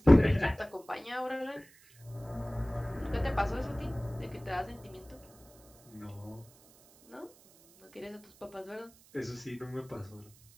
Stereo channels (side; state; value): right; noise; hiss, 26 dB below the sound